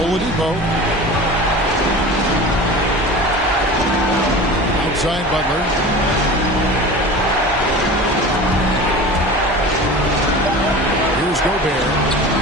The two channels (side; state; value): both; normal; correlation 0.35